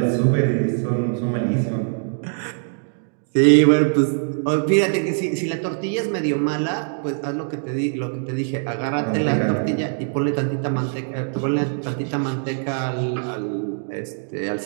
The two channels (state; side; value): silent; left; 64 dB below the other